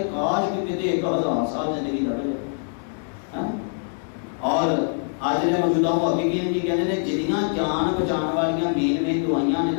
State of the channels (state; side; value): silent; right; digital silence